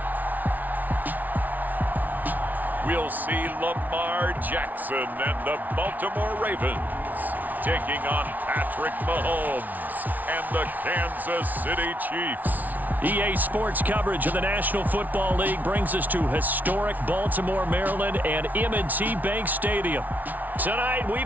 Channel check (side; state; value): left; late; 0.078 ms